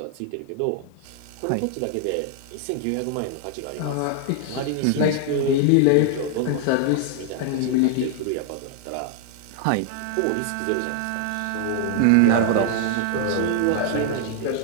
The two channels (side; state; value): both; different; correlation 0.00